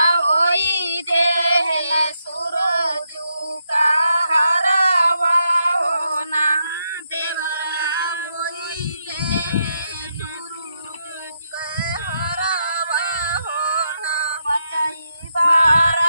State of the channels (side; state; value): both; inverted; correlation -0.81